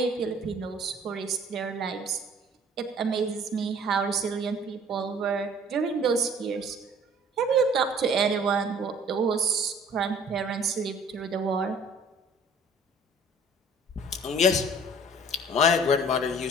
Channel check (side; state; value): both; normal; correlation 0.52